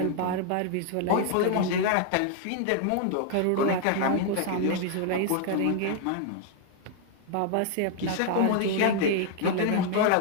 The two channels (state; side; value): different; both; correlation 0.00